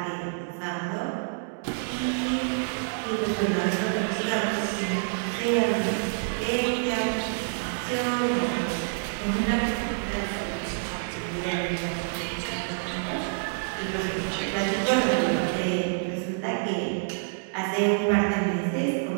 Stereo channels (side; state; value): left; silent; digital silence